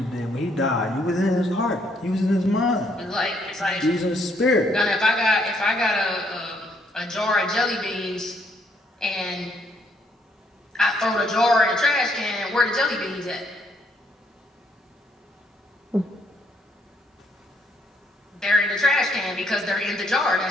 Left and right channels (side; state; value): both; normal; correlation 0.70